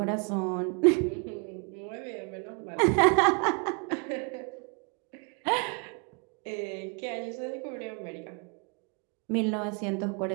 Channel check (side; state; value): left; quieter; 35.2 dB